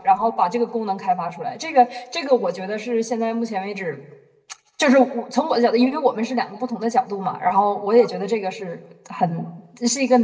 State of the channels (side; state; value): both; identical; correlation 1.00